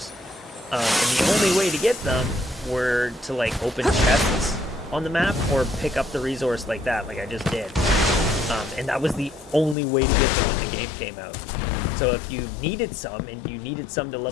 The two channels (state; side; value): drops out; right; at 9.8 s